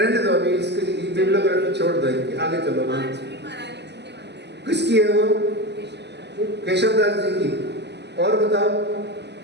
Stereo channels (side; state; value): left; late; 0.50 ms